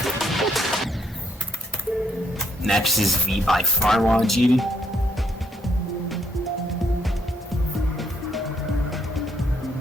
Next is V by Farwa GD.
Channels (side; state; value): both; normal; correlation 0.73